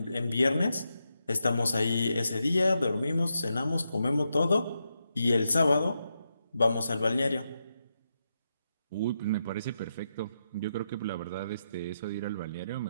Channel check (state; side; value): inverted; both; correlation -0.85